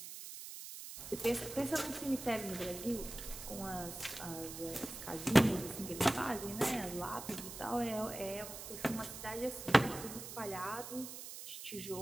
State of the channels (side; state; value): right; noise; hiss, 10 dB below the sound